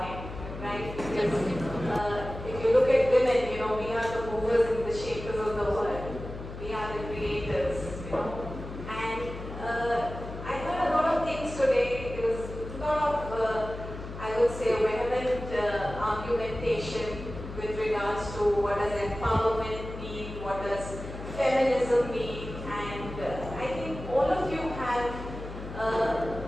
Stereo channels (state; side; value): noise; left; hum, 10 dB below the sound